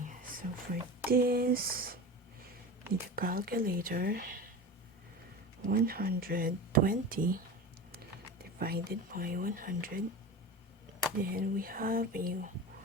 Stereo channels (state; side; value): normal; both; correlation 0.29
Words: so for this, need a calculator. 120 divided by 100, then we have a